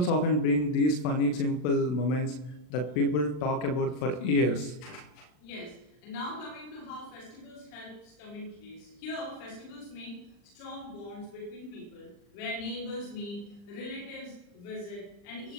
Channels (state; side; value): late; right; 39 ms